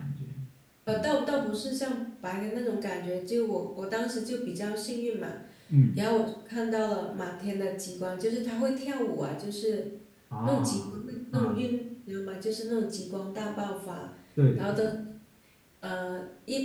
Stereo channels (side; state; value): both; identical; correlation 1.00